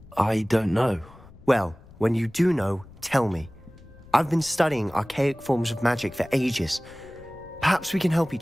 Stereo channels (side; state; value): left; noise; rumble, 22 dB below the sound